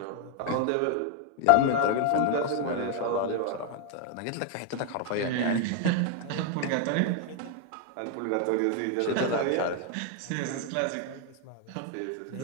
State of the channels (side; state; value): both; different; correlation 0.00